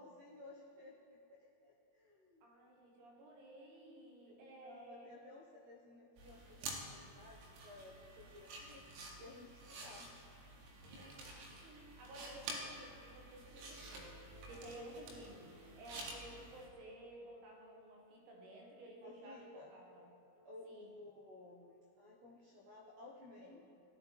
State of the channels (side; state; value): left; late; 21 ms